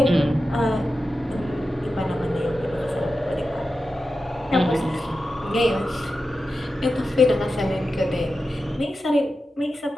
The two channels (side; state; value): both; normal; correlation 0.91